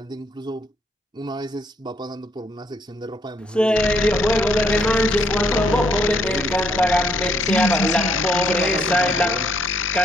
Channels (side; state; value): both; normal; correlation 0.69